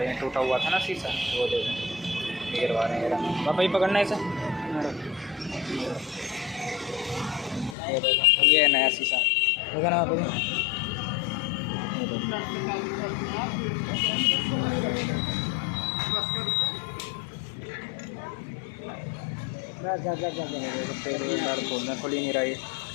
हैं, टूटा हुआ था ना शीशा, वो देखो गिरवा रहे हैं। पापा ही पकड़ना है इसे, ये है नया शीशा, देखा ना पापा जी। खोलना खुल ही नहीं रहा है।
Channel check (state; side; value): drops out; right; at 7.8 s